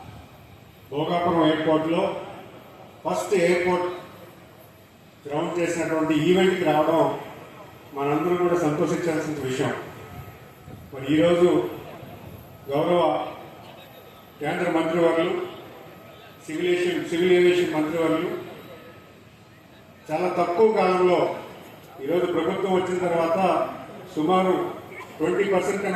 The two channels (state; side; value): identical; both; correlation 1.00